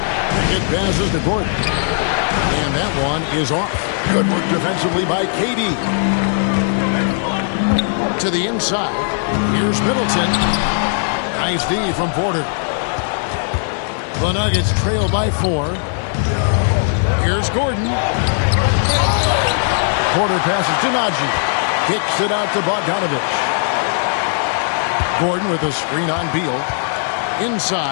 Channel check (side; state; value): right; silent; digital silence